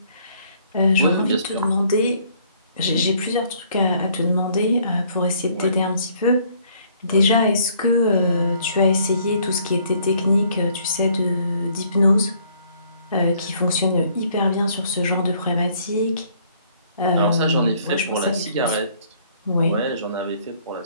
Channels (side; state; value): both; inverted; correlation -0.62